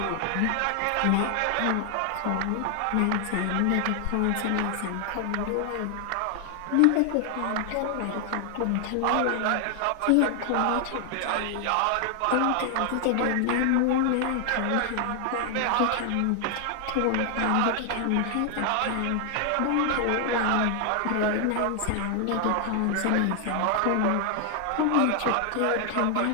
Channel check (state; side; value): different; both; correlation 0.00